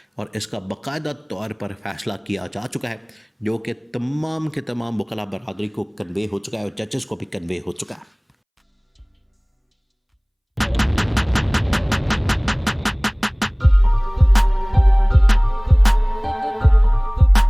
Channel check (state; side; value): identical; both; correlation 1.00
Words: और इसका बाकायदा तौर पर फैसला किया जा चुका है, जो कि तमाम के तमाम वकला बरादरी को कन्वे हो चुका है और जजेस को भी कन्वे हो चुका है।